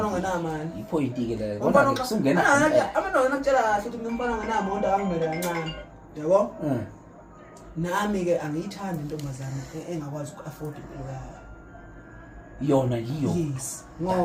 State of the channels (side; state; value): both; identical; correlation 1.00